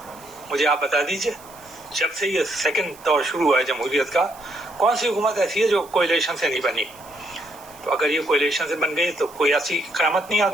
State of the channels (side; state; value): right; noise; hiss, 22 dB below the sound